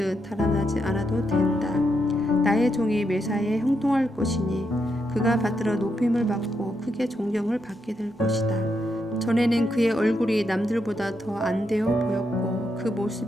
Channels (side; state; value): both; normal; correlation 0.81